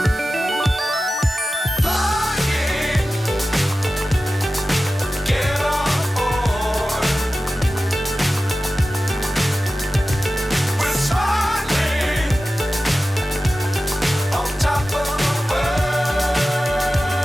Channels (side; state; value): both; normal; correlation 0.95